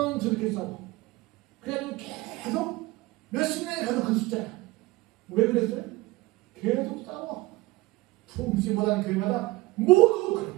저렇게 싸워. 그래가지고 계속 몇십 년이 가도 그 숫자야. 왜 그랬어요? 계속 싸워. 부흥시 못하는 교회마다 모두 그래.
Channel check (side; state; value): left; quieter; 20.4 dB